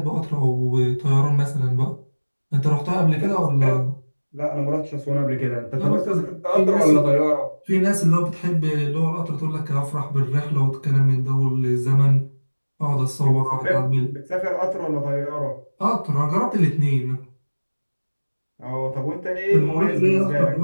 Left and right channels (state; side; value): inverted; both; correlation -1.00